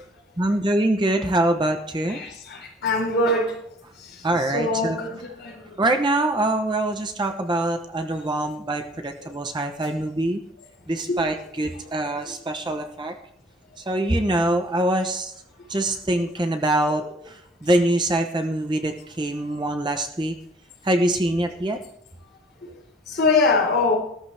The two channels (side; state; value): both; normal; correlation 0.53